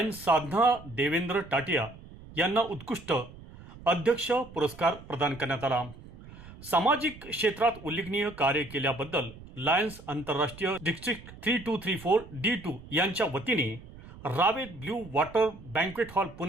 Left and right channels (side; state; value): right; noise; rumble, 18 dB below the sound